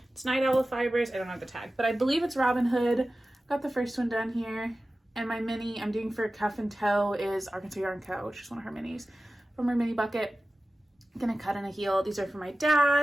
It's Night Owl Fibers. I don't have the tag, but I believe it's Robin Hood. Got the first one done here. And my mini I'm doing for cuff and toe is Arkansas Yarn Co., which is one of her minis from her mini bucket. I'm gonna cut in a heel. These are for my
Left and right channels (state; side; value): normal; both; correlation 0.95